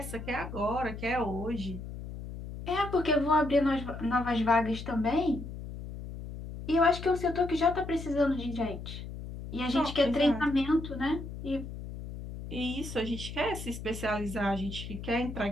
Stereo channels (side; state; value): left; noise; hum, 9 dB below the sound